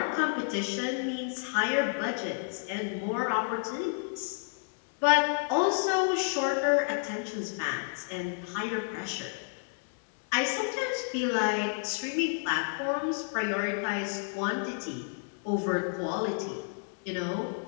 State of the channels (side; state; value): right; silent; 57 dB below the other